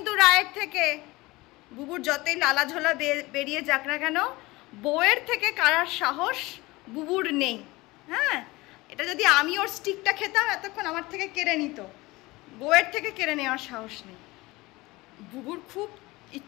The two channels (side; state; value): right; quieter; 21.3 dB